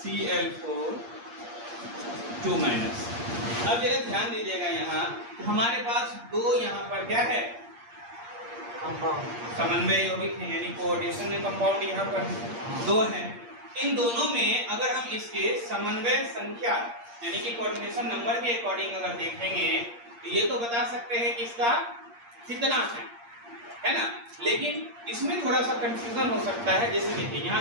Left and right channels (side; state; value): left; late; 8.6 ms